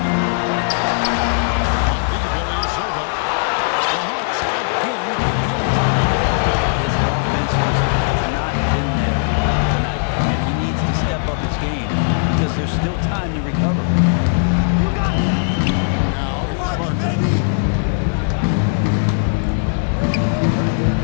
On deep, Ilyasova. The Hawks again get hit. His offense just has not been there tonight, and he needs to step up his game because there's still time to recover. Now here's Parker.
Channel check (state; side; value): silent; right; digital silence